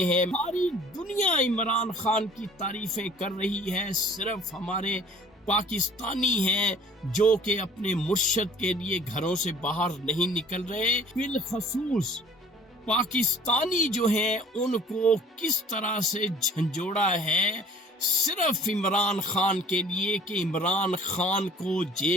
ہیں۔ ساری دنیا عمران خان کی تعریفیں کر رہی ہے، صرف ہمارے پاکستانی ہیں جو کہ اپنے مرشد کے لیے گھروں سے باہر نہیں نکل رہے۔ بالخصوص پاکستانی جو ہیں ان کو کس طرح سے جھنجھوڑا ہے صرف عمران خان کے لیے کہ عمران خان کو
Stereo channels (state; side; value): normal; both; correlation 0.52